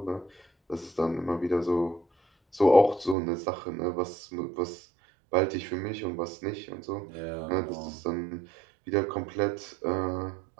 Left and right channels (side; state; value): left; drops out; at 3.2 s